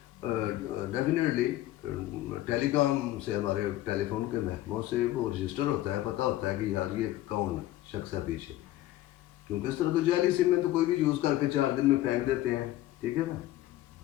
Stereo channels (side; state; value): right; quieter; 14.9 dB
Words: ڈیفینیٹلی ٹیلی کام سے ہمارے ٹیلی فون کے محکموں سے وہ رجسٹر ہوتا ہے، پتہ ہوتا ہے کہ یار یہ کون شخص ہے پیچھے. کیونکہ اس طرح تو جعلی سم میں تو کوئی بھی یوز کر کے 4 دن میں پھینک دیتے ہیں، ٹھیک ہے نا.